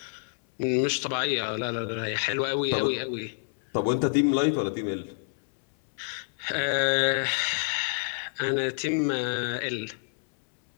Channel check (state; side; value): silent; right; 60 dB below the other